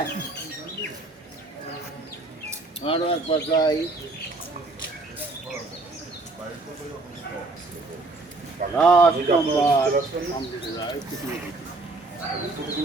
আরো একবার যাই লাস্ট নাম্বার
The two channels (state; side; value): quieter; left; 3.2 dB